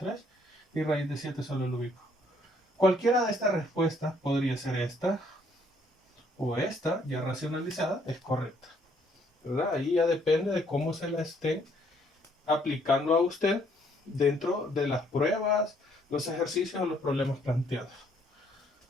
Y raíz de 7 solo lo ubico. Cualquiera de estas respuestas podría ser esta o esta, ya racionalizada, es correcta. ¿Verdad? Ahí ya depende de cómo se la esté aplicando a usted dentro de las pruebas, los ejercicios o los problemas planteados.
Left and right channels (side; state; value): both; normal; correlation 0.66